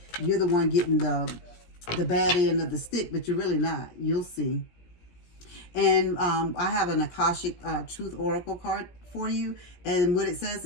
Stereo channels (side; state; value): right; late; 17 ms